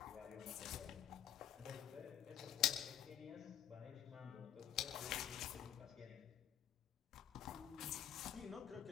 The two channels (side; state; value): right; quieter; 10.4 dB